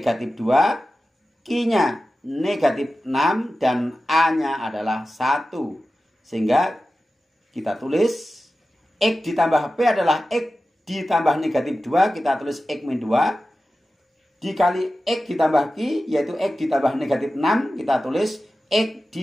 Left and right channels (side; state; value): both; normal; correlation 0.94